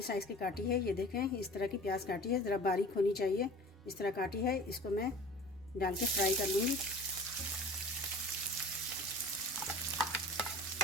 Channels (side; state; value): both; normal; correlation 0.41